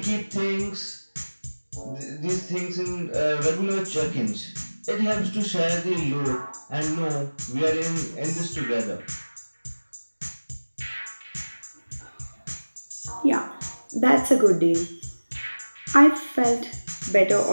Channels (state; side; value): inverted; both; correlation -1.00